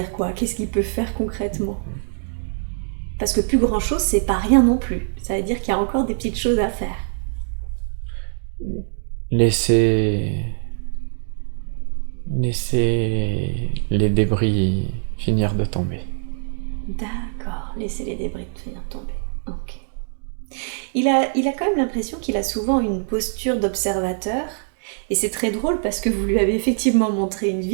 quoi? Qu'est-ce qu'il peut faire concrètement? Parce que plus grand-chose, c'est pas rien non plus. Ça veut dire qu'il y a encore des petites choses à faire. Laisser les débris finir de tomber. D'accord, laisser les débris finir de tomber. Ok. Il a quand même l'impression qu'il a souvent une posture d'observateur. Et c'est très drôle parce que vous lui avez effectivement montré une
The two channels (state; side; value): silent; left; 64 dB below the other